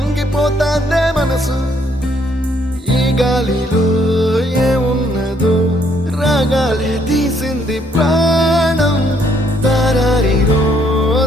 మనసు ఈ గాలిలో ఏమున్నదో రాగాలే తీసింది ప్రాణం దారారిరో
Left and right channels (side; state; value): both; normal; correlation 0.68